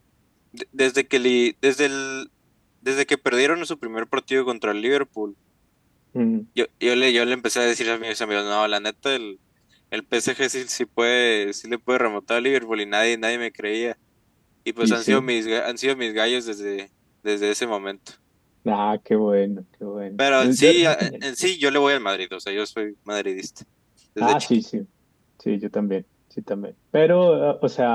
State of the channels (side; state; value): both; identical; correlation 1.00